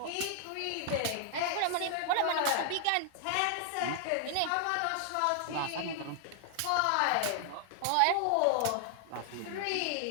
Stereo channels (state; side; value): different; both; correlation 0.00